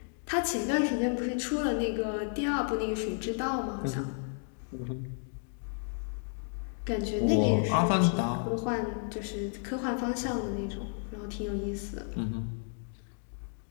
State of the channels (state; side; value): silent; right; 56 dB below the other